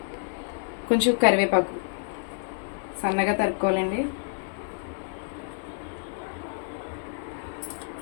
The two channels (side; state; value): right; silent; 56 dB below the other